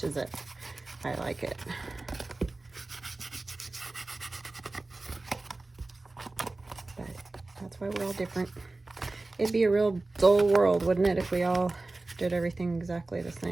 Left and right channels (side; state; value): left; quieter; 3.2 dB